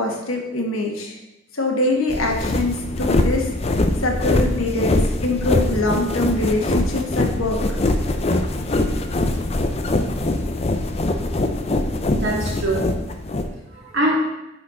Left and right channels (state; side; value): normal; both; correlation 0.53